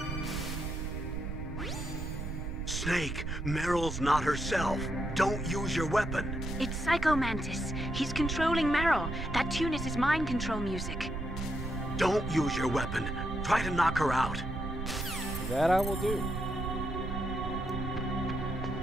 Snake, Meryl's not herself. Don't use your weapon. It's Psycho Mantis. He's controlling Meryl. That tune is his mind control music. Don't use your weapon. Try to knock her out. That I will do.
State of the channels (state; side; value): noise; right; rumble, 5 dB below the sound